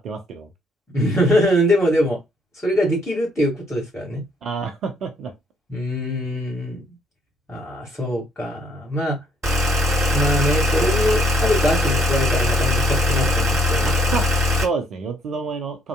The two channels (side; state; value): both; normal; correlation 0.66